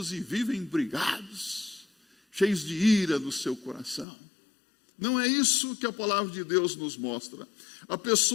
e vivem brigados, cheios de ira no seu coração. Não é isso que a palavra de Deus nos mostra. A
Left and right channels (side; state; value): right; drops out; at 4.0 s